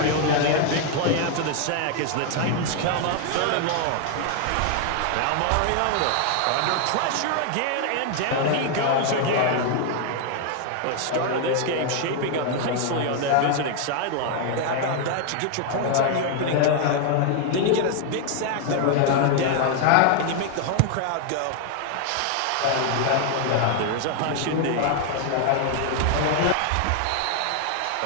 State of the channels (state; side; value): different; both; correlation 0.00